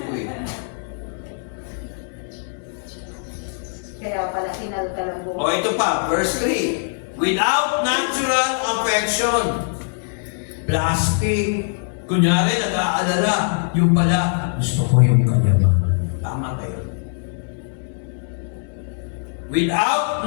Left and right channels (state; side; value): silent; right; 64 dB below the other